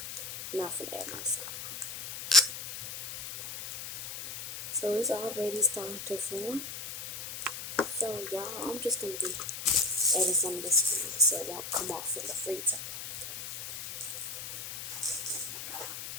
not for add my soap. So it's already starting to form. So y'all, I'm just gonna be adding some of this slime so it won't come off in the freezer.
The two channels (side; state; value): left; noise; hiss, 8 dB below the sound